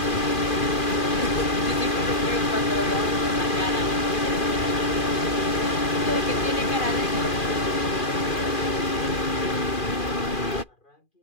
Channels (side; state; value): right; late; 2.4 ms